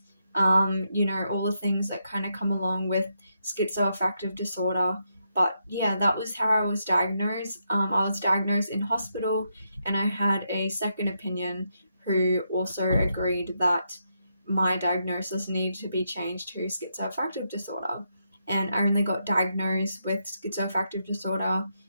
all the things that kind of come along with schizoaffective disorder. But yeah, that was how I was diagnosed. I was diagnosed in hospital, and I had a second opinion who also agreed that my diagnosis needed to be changed to schizoaffective disorder. And I only got diagnosed with schizoaffective disorder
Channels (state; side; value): inverted; both; correlation -0.81